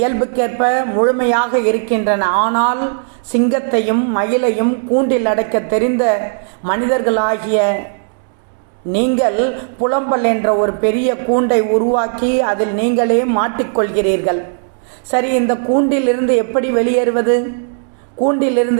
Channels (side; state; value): left; silent; digital silence